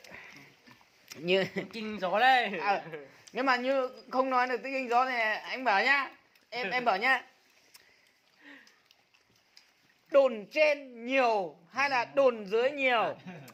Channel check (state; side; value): identical; both; correlation 1.00